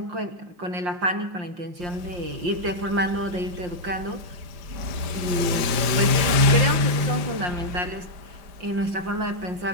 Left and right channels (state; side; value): late; left; 5.1 ms